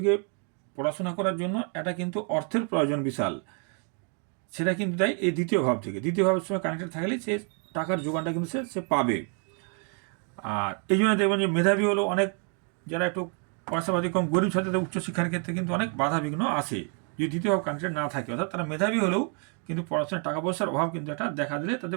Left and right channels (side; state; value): left; quieter; 39.8 dB